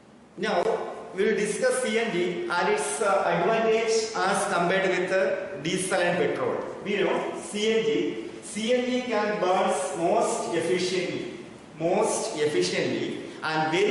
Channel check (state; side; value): identical; both; correlation 1.00